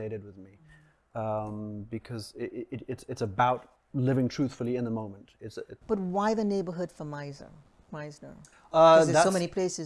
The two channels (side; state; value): both; identical; correlation 1.00